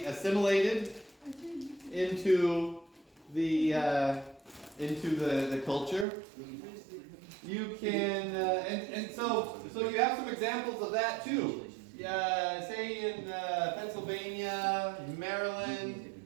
assimilated into the culture. You can and so you have some examples of that too. Say in Pennsylvania, Maryland,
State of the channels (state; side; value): drops out; left; at 6.1 s